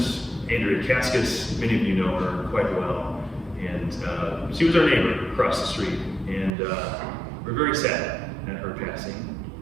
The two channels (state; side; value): drops out; left; at 6.5 s